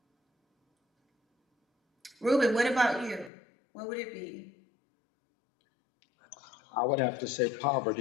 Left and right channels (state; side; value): drops out; right; at 3.3 s